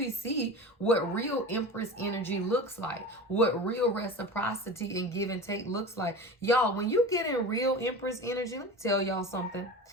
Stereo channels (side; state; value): both; normal; correlation 0.32